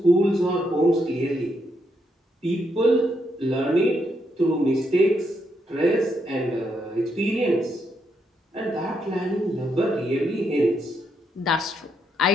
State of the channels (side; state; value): both; normal; correlation 0.78